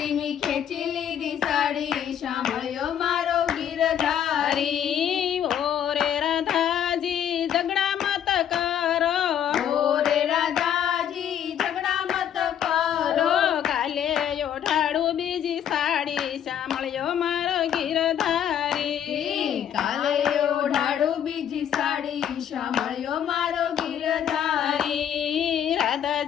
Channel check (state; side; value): quieter; right; 9.5 dB